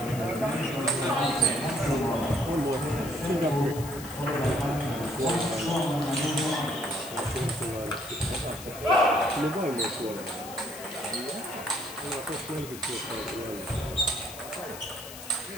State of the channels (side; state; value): left; noise; hiss, 13 dB below the sound